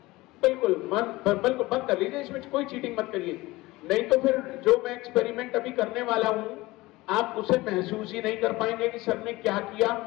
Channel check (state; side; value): quieter; right; 20.2 dB